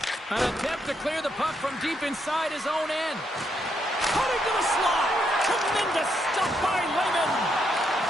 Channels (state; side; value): normal; both; correlation 0.78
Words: An attempt to clear the puck from deep inside his own end. Cutting to the slot. Tremendous stuff by Lehman.